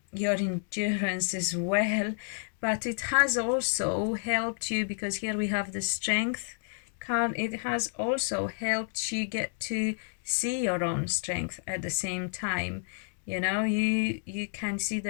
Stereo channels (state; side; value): silent; right; 58 dB below the other